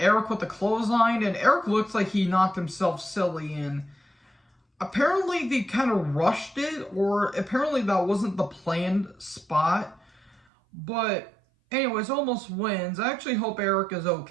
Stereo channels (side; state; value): left; drops out; at 10.4 s